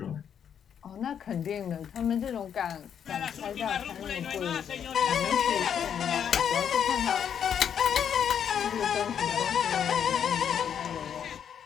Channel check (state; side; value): quieter; right; 8.4 dB